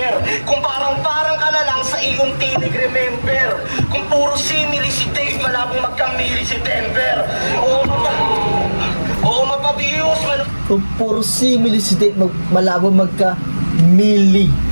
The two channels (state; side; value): inverted; both; correlation -1.00